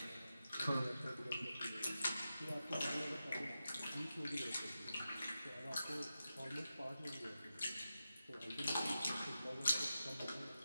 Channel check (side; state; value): both; inverted; correlation -0.91